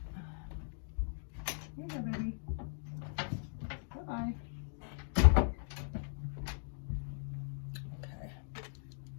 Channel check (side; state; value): right; silent; digital silence